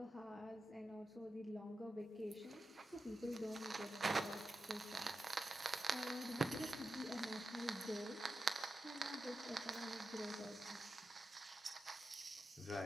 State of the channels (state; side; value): normal; both; correlation 0.90